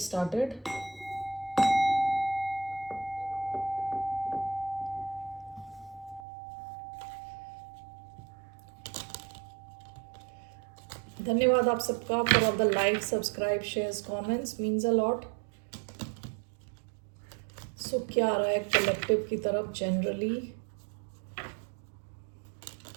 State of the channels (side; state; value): left; drops out; at 6.2 s